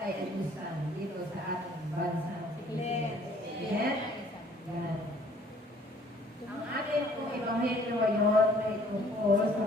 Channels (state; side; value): normal; both; correlation 0.58